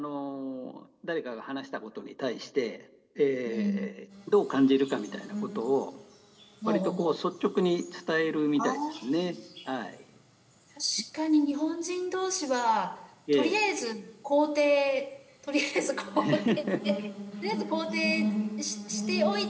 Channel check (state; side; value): identical; both; correlation 1.00